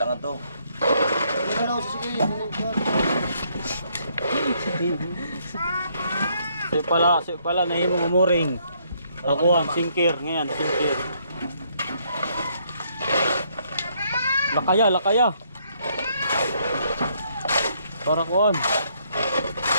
to. Si pala nahimo umuring. Ako ang singkir ngayon, singkir. Lakaya. Para kuan.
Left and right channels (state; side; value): inverted; both; correlation -0.70